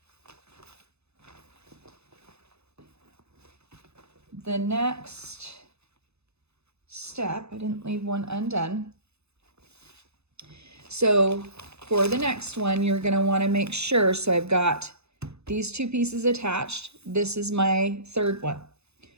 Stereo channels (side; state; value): left; late; 0.80 ms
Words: the next step, I didn't leave one undone. So for the next one, you're going to want to make sure, so I've got these 2 pieces attached. This is my third one.